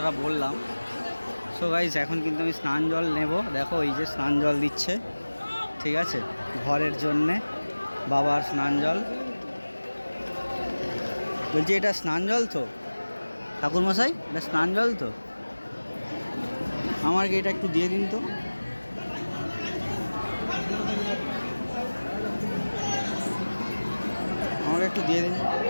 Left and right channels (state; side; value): inverted; both; correlation -1.00